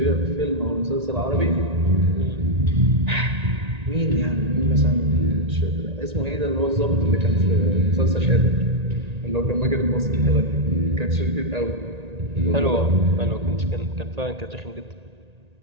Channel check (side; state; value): left; late; 1.9 ms